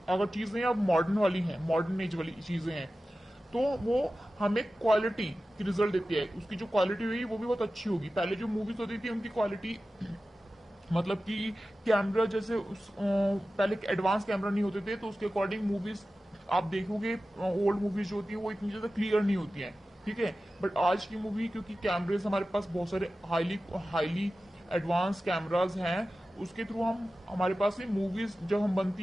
अगर चीजें अब मॉडर्न वाली हैं, मॉडर्न एज वाली चीजें हैं, तो वो हमें क्वालिटी की रिजल्ट देती है। उसकी जो क्वालिटी हुई वो भी बहुत अच्छी होगी। पहले जो मूवीज होती थी उनकी क्वालिटी मतलब कि कैमरा जैसे पहले एडवांस कैमरा नहीं होते थे, तो उसके अकॉर्डिंग मूवीज आप देखोगे ओल्ड मूवीज जो होती है वो इतनी ज्यादा क्लियर नहीं होती हैं, ठीक है। बट आज की मूवी क्योंकि कैमरेज हमारे पास बहुत सारे हाईली हाईली एडवांस कैमराज हैं, उसके थ्रू हम हमारे पास में मूवीज जब हम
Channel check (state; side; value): normal; both; correlation 0.95